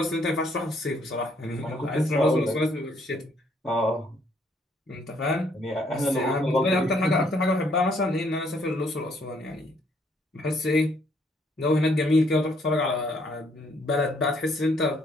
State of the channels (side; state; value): both; normal; correlation 0.68